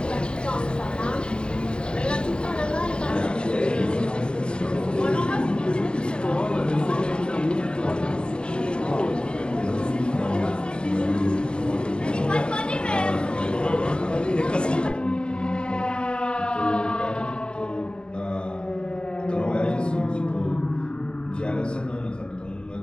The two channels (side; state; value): right; late; 0.050 ms